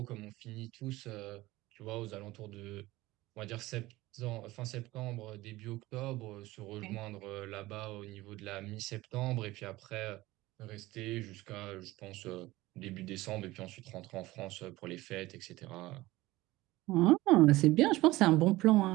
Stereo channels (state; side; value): quieter; left; 18.6 dB